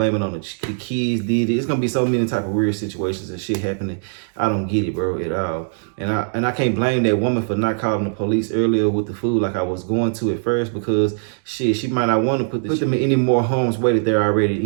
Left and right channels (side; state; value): left; silent; digital silence